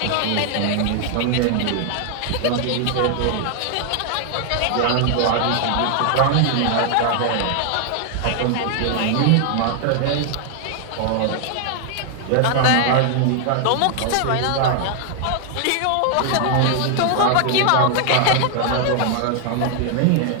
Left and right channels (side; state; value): both; different; correlation 0.00